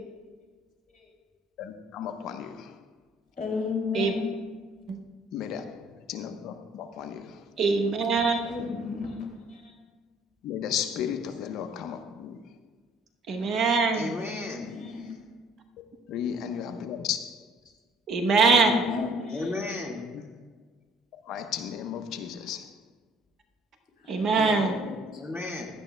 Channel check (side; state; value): both; normal; correlation 0.57